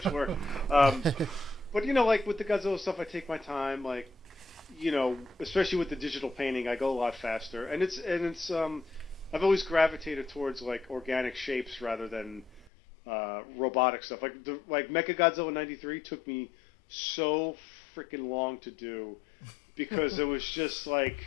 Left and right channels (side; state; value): right; drops out; at 12.7 s